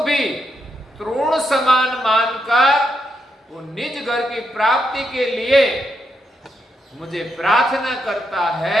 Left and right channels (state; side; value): normal; both; correlation 0.81